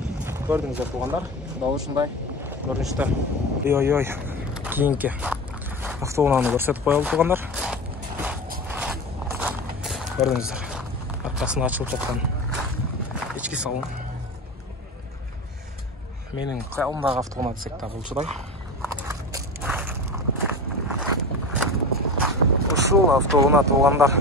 Көрдіңіздер туғандар. Дал ушундай көрүнүштө. Ой. Кийинки автоунааны көрсөтүп коелу туғандар. Көрдіңіздер. Аркасына ачылып жаткан ички салон. Менин кыялымдагы автоунаа десек да болчудай. Ушул автоунаа туғандар.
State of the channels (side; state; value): both; normal; correlation 0.29